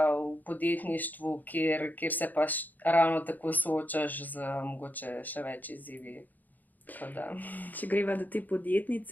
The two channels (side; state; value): right; late; 0.084 ms